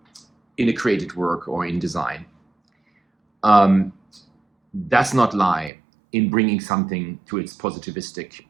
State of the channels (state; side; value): drops out; left; at 5.7 s